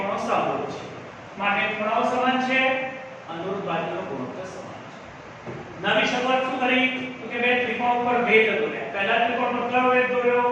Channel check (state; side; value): identical; both; correlation 1.00